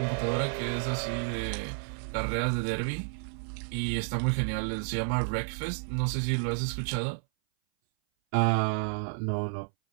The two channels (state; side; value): silent; left; 57 dB below the other